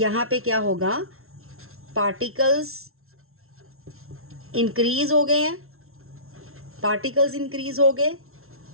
पे क्या होगा? पार्टिकल्स इंक्रीज हो गए हैं, पार्टिकल्स इंक्रीज हो गए,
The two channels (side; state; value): left; late; 0.62 ms